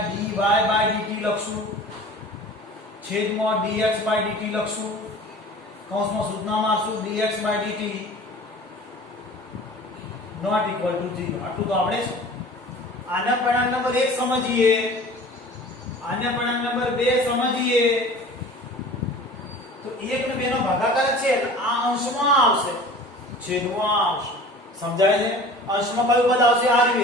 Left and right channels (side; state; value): both; normal; correlation 0.42